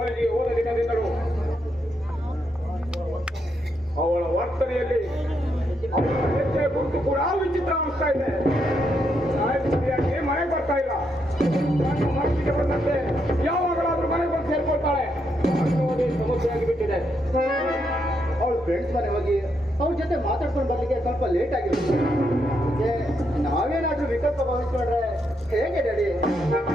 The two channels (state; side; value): normal; both; correlation 0.79